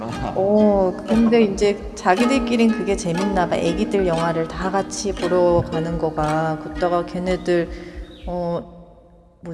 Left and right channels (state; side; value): identical; both; correlation 1.00